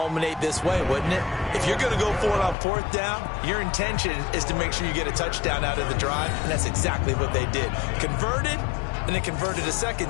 this way, wouldn't it? If you're going to go for it on 4th down, your intention is to make sure you get a touchdown out of the drive, and that's exactly what they did. Converted, and they converted a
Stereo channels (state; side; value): drops out; right; at 2.6 s